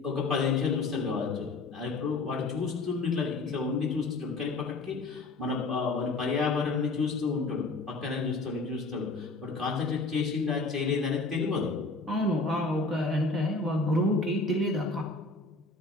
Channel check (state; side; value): quieter; right; 3.4 dB